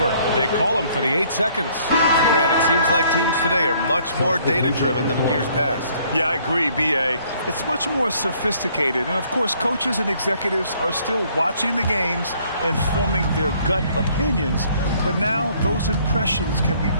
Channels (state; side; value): inverted; both; correlation -0.62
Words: They call him for the 8 seconds. Grant, it seems like teams today are much more data-driven than in years past. Yeah, I agree, B.A. It's much more sophisticated. And, of course, coaches and executives are still watching the games and forming their gut opinions. But now those impressions can be